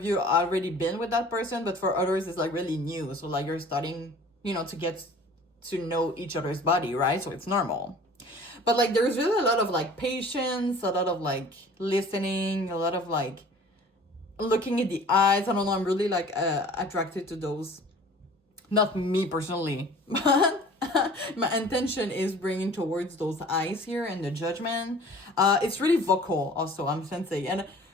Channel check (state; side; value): normal; both; correlation 0.47